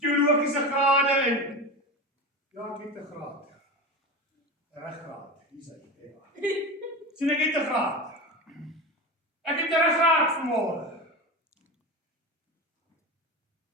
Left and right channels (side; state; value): both; normal; correlation 0.24